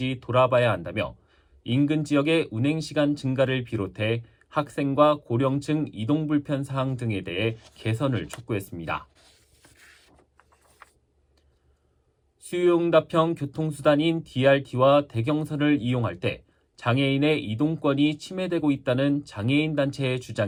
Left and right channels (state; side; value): identical; both; correlation 1.00